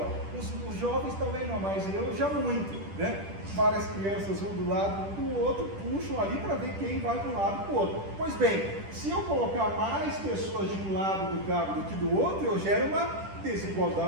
Os jovens talvez não, mas eu já muito, né? Várias crianças vão do lado do outro, puxam ali para ver quem vai de um lado para o outro. Pois bem, se eu colocar mais pessoas de um lado do cabo do que do outro, eu gero uma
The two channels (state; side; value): late; left; 10 ms